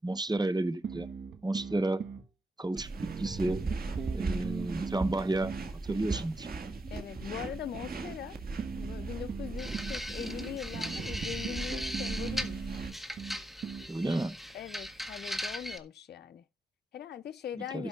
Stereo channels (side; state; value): both; normal; correlation 0.83